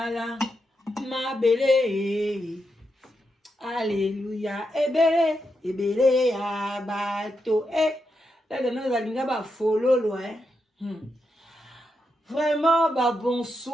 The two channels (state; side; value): normal; both; correlation 0.85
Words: mabele alléluia ebele ya bato là nous allons ba fololo vraiment ba